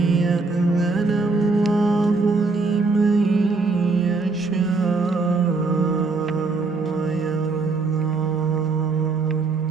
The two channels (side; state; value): left; quieter; 3.9 dB